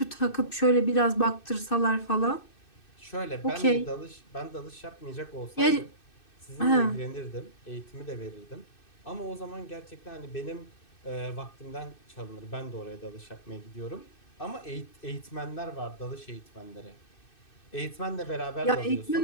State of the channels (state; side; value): late; right; 2.6 ms